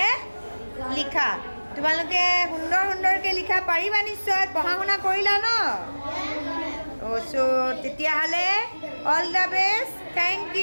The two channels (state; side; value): inverted; both; correlation -1.00